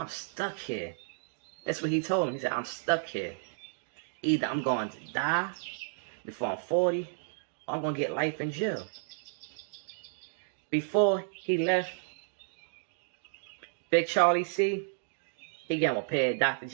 stuck here. That's what he told him. He said, I'm stuck here. Either I'm going to die before I'm 40, or I'm going to get life in jail. Before he left Big Charlie C, he gave him a pair of Dr.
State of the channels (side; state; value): left; silent; digital silence